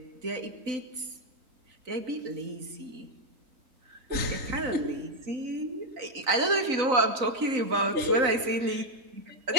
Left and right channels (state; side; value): late; left; 3.9 ms